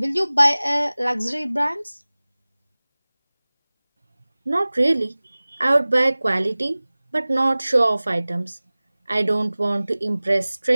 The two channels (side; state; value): both; inverted; correlation -0.99